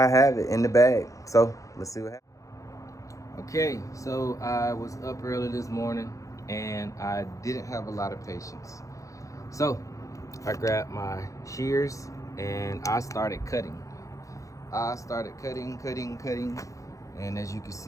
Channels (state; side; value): late; right; 0.16 ms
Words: have it in the bag. So let's see what happens. Okay, so I was up early this morning and I didn't have a lot of patience. So I grabbed my shears and I started cutting. Cutting. And as you can